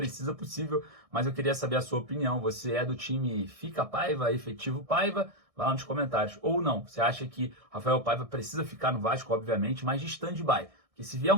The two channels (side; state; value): left; late; 1.6 ms